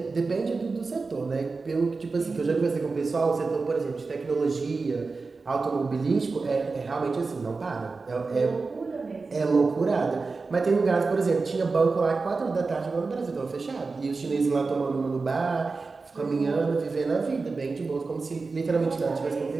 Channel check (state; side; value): quieter; left; 4.1 dB